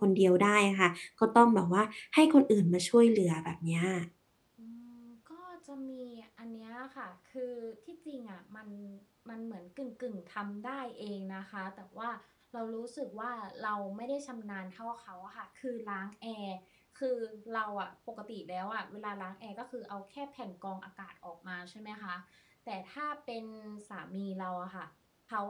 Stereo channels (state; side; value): identical; both; correlation 1.00